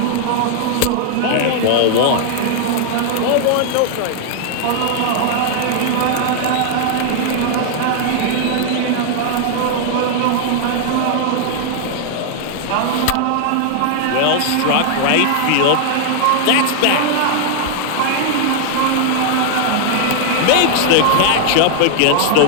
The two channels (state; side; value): different; both; correlation 0.00